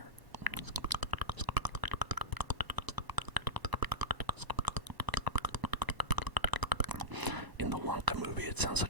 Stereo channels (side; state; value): left; late; 1.0 ms